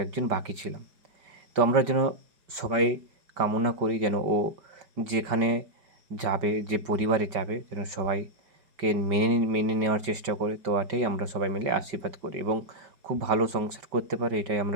বাকি ছিলাম। তো আমরা যেন সবাই কামনা করি যেন ও যেখানে যাবে, যে পরিবারে যাবে, যেন সবাইকে মেনে নেওয়ার চেষ্টা করে। তো এটাই আমরা সবাই মিলে আশীর্বাদ করি এবং খুব ভালো সংসার করতে পারে, এটাই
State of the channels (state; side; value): late; left; 5.2 ms